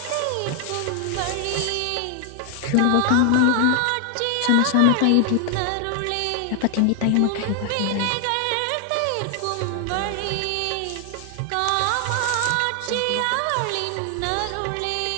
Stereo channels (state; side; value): different; both; correlation 0.00